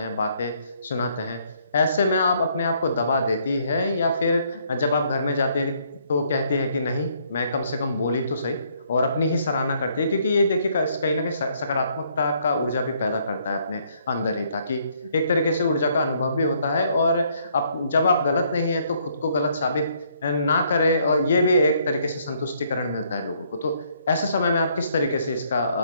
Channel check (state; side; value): inverted; both; correlation -0.68